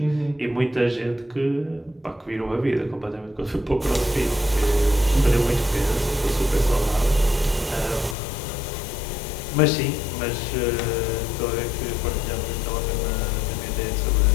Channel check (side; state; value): right; drops out; at 8.2 s